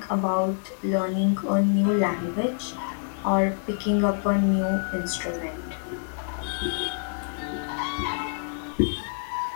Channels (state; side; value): silent; right; digital silence